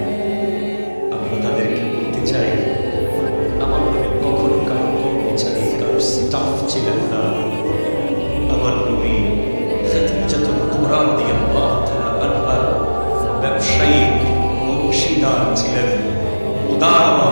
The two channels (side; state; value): both; inverted; correlation -1.00